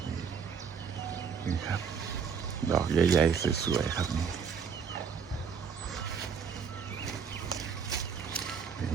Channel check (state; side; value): quieter; left; 6.5 dB